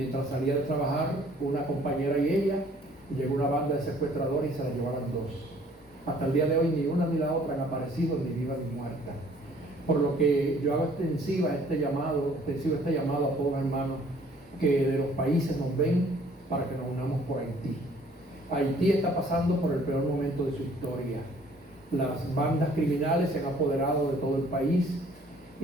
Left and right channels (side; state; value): both; normal; correlation 0.58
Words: salía de trabajar, una compañera y ella, llegó una banda de secuestradores y se la llevaron dos. Hasta el día de hoy ni una ni la otra han aparecido, ni viva ni muerta. Por lo que yo hago extensivo este llamado a todos los hermanos que de los países nos ven, para que nos unamos por Haití. Haití está pasando por el peor momento de su historia. Las bandas criminales se han apoderado de todo el país